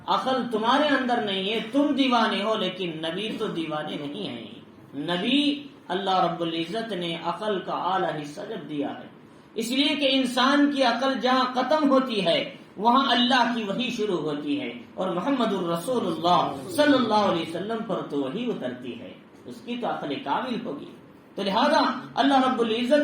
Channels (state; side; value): identical; both; correlation 1.00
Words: عقل تمہارے اندر نہیں ہے، تم دیوانے ہو، لیکن نبی تو دیوانے نہیں ہیں. نبی اللہ رب العزت نے عقل کا اعلیٰ حصہ جب دیا ہے، اس لیے کہ انسان کی عقل جہاں ختم ہوتی ہے وہاں اللہ کی وحی شروع ہوتی ہے، اور محمد الرسول اللہ صلی اللہ علیہ وسلم پر تو وحی اترتی ہے، اس کی تو عقل کامل ہوگی. تو لہذا اللہ رب